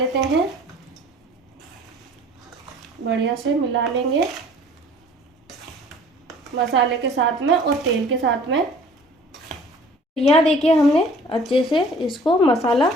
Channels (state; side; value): normal; both; correlation 0.51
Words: हैं, बढ़िया से मिला लेंगे मसाले के साथ में और तेल के साथ में। यहाँ देखिए हमने अच्छे से इसको मसाला